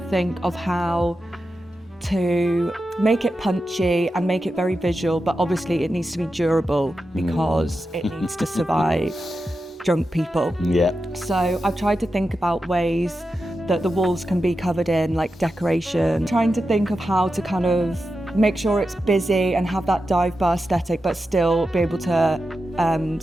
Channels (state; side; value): normal; both; correlation 0.90